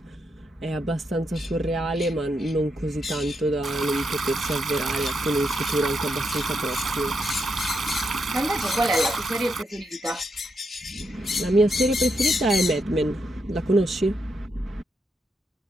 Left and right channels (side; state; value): both; normal; correlation 0.81